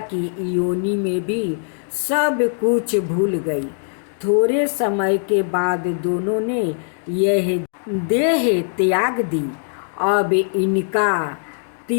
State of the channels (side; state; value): right; silent; digital silence